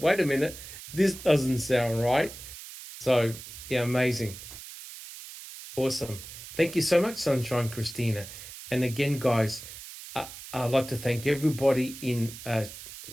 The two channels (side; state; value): right; noise; hiss, 13 dB below the sound